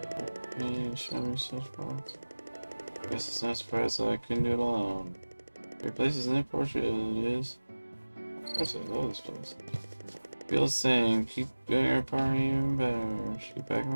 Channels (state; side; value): inverted; both; correlation -1.00